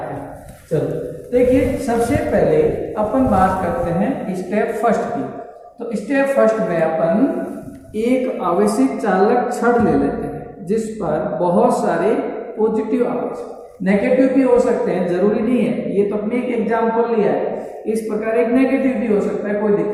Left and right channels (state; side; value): identical; both; correlation 1.00